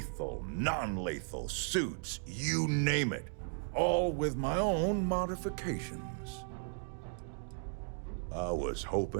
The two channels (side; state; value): left; silent; digital silence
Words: non-lethal, suits, you name it. All with my own modifications. I was